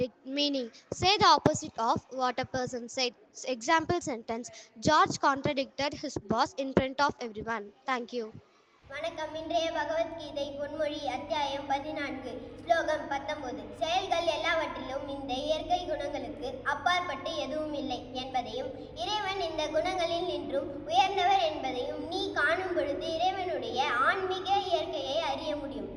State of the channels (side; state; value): both; identical; correlation 1.00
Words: Meaning: say the opposite of what a person said. Example sentence: George contradicted his boss in front of everyone. Thank you. வணக்கம். இன்றைய பகவத்கீதை பொன்மொழி அத்தியாயம் 14 ஸ்லோகம் 19. செயல்கள் எல்லாவற்றிலும் இந்த இயற்கை குணங்களுக்கு அப்பாற்பட்டு எதுவும் இல்லை என்பதையும் இறைவன் இந்த குணங்களில் நின்றும் உயர்ந்தவர் என்பதையும் நீ காணும் பொழுது இறைவனுடைய ஆன்மீக இயற்கையை அறிய முடியும்.